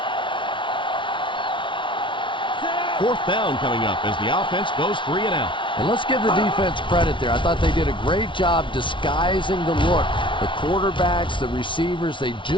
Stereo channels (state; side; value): late; right; 0.24 ms